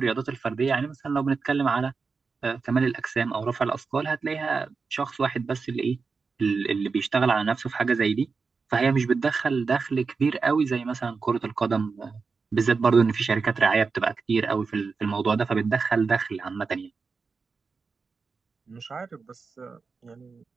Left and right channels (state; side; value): quieter; left; 4.8 dB